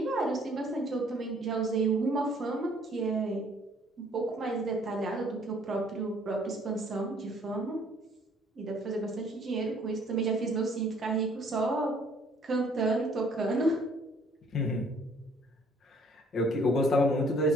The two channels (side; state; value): both; normal; correlation 0.60